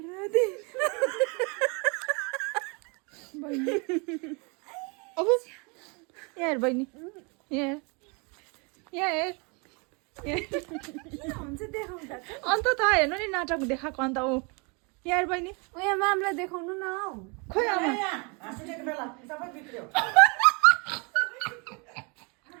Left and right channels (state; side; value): quieter; left; 31.9 dB